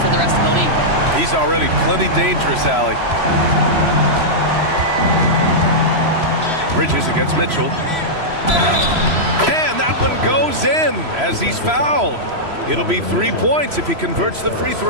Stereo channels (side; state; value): left; late; 3.0 ms